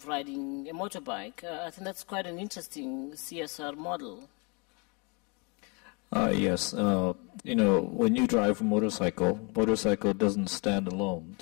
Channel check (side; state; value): right; quieter; 32.2 dB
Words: riding a motorbike. I think that's quite an interesting CSR model. Yes, when you drive a motorcycle doesn't stand alone,